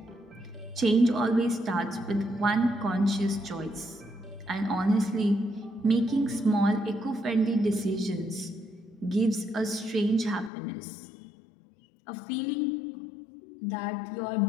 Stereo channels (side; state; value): right; drops out; at 10.5 s